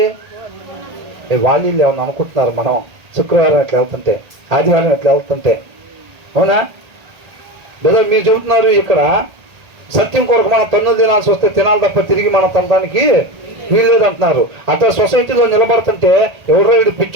వాళ్ళు ఏమన్నా అనుకుంటున్నారు మనం శుక్రవారం ఎట్లా వెళ్తుంటే, ఆదివారం ఎట్లా వెళ్తుంటే, అవునా? లేదా మీరు చెబుతున్నారు ఇక్కడ సత్యం కొరకు మనం తన్నులు తినాల్సి వస్తే తినాలి తప్ప తిరిగి మనం తినడానికి వీల్లేదు అంటున్నారు. అట్లా సొసైటీలో నిలబడుతుంటే ఎవరో వీడు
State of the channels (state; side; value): late; left; 1.4 ms